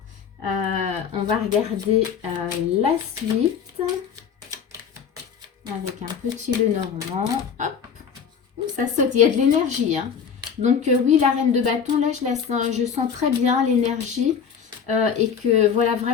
On va regarder la suite. Avec un petit Lenormand. Hop. Ouh, ça saute. Il y a de l'énergie. Hein. Donc, oui, la reine de bâton, là, je sens très bien l'énergie. Et que, voilà,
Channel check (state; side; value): quieter; right; 7.0 dB